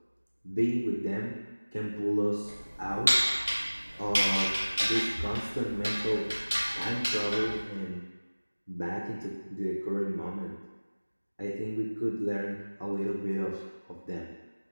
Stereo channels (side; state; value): both; inverted; correlation -1.00